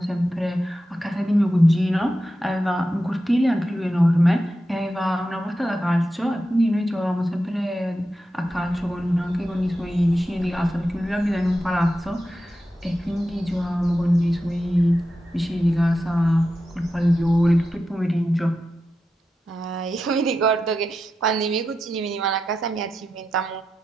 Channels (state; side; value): normal; both; correlation 0.89